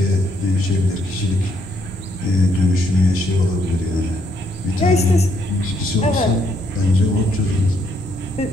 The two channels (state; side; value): normal; both; correlation 0.73